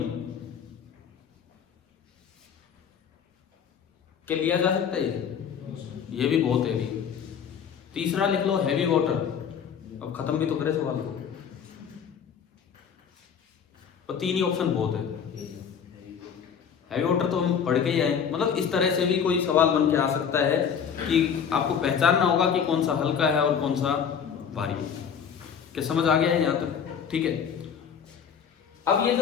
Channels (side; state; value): right; quieter; 7.4 dB